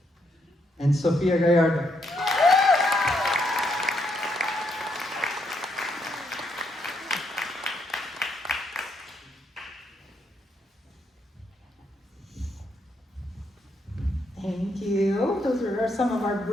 and Sofia Gallardo. Thank you. Those are some of our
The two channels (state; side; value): normal; both; correlation 0.76